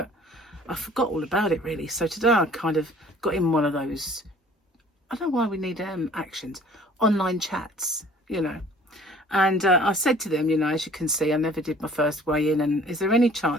I forgot all about it really. So today I kind of got in one of those, I don't know why we need actions, online chats, you know. And I said to them, you know, as you can see, I never did my first weigh in, and is there any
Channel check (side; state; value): both; normal; correlation 0.52